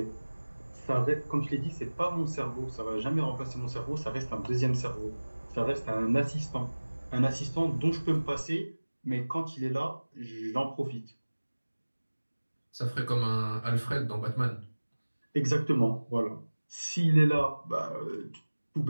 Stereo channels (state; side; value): inverted; both; correlation -1.00